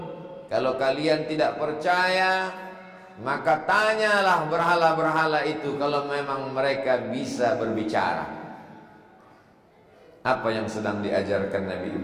Kalau kalian tidak percaya, maka tanyalah berhala-berhala itu kalau memang mereka bisa berbicara. Apa yang sedang diajarkan Nabi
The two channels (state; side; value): identical; both; correlation 1.00